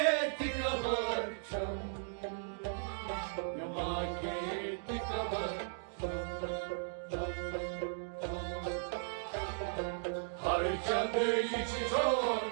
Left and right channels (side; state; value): left; silent; digital silence